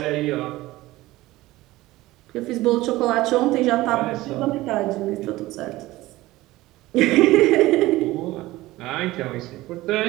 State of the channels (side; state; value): left; quieter; 18.0 dB